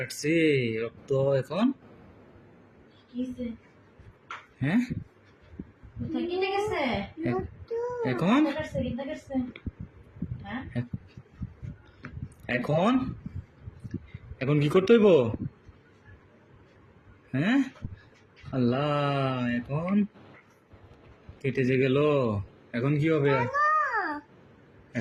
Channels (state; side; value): identical; both; correlation 1.00